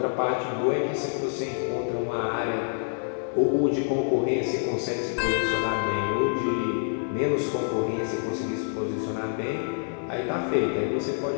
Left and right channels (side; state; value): right; silent; 56 dB below the other